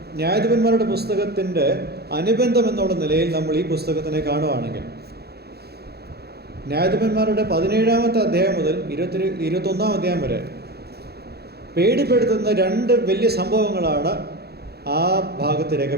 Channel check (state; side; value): late; left; 0.47 ms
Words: ന്യായാധിപന്മാരുടെ പുസ്തകത്തിൻ്റെ അനുബന്ധം എന്നുള്ള നിലയിൽ നമ്മൾ ഈ പുസ്തകത്തിനെ കാണുകയാണെങ്കിൽ ന്യായാധിപന്മാരുടെ 17-ാമത്തെ അധ്യായം മുതൽ 21-ാം അധ്യായം വരെ പേടിപ്പെടുത്തുന്ന 2 വലിയ സംഭവങ്ങളാണ് ആ ഭാഗത്ത്